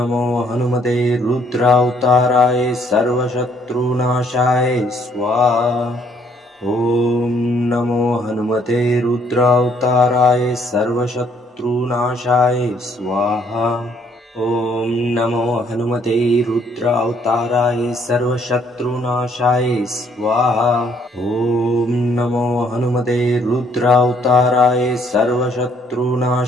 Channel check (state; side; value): normal; both; correlation 0.66